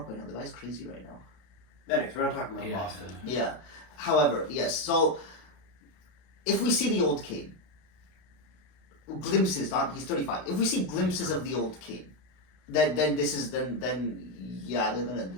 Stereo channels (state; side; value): late; right; 32 ms